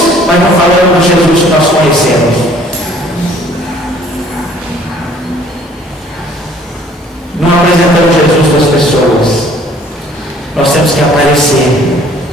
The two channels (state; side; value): normal; both; correlation 0.57